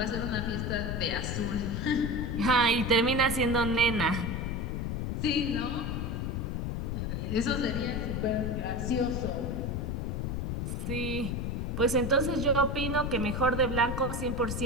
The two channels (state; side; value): noise; left; rumble, 2 dB below the sound